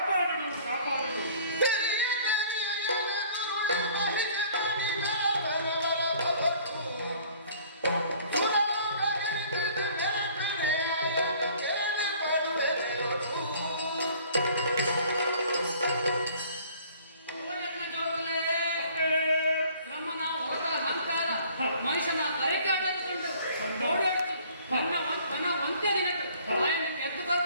కాపాడుడు ಮನುಷ್ಯನ ಅರೆಕಾಟಕೊಂಡು ಓಡಾಡ್ತು ನನ್ನ ಒಂದೇ ದಿನಕ್ಕೆ ಆಯನ ಎದ್ದು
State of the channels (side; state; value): both; inverted; correlation -0.54